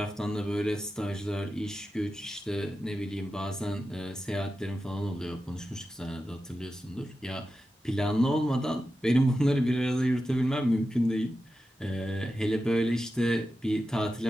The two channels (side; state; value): both; normal; correlation 0.91